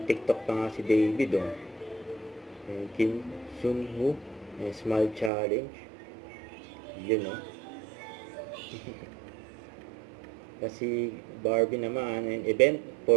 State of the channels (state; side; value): drops out; left; at 5.3 s